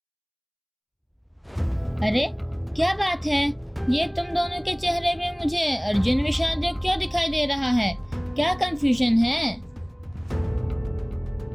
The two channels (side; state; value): both; identical; correlation 1.00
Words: अरे, क्या बात है? ये तुम दोनों के चेहरे पे मुझे अर्जुन विषाद योग क्यों दिखाई दे रहा है? क्या कंफ्यूजन है?